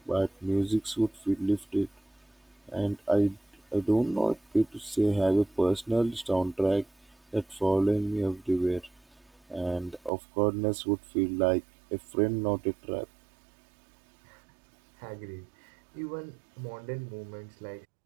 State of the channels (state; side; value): drops out; left; at 10.1 s